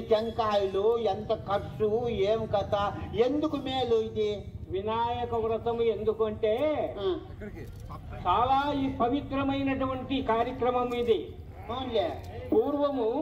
టెంకాయలు, ఎంత ఖర్చు, ఏం కథ, ఎందుకు మేలు ఇది వినాయక వ్రతము? ఎందుకంటే చాలా ఈ పవిత్రమైనటువంటి కార్యక్రమం ఇది. పూర్వము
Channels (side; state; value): both; identical; correlation 1.00